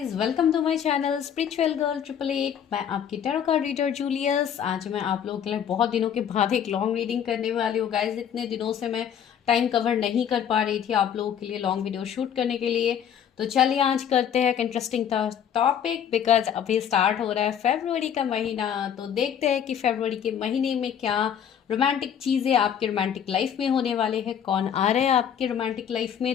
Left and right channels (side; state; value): right; quieter; 8.7 dB